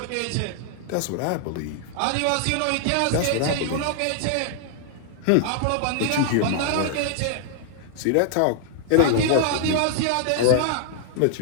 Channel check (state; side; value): different; both; correlation 0.00